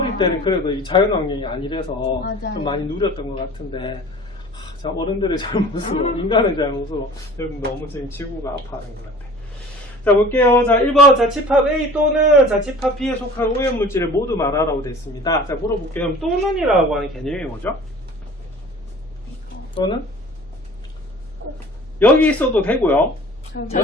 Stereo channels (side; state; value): both; normal; correlation 0.45